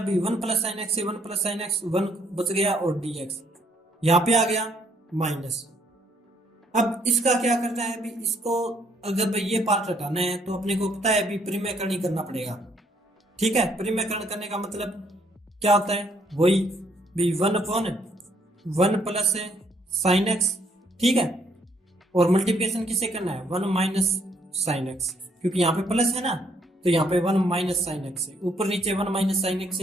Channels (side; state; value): both; normal; correlation 0.68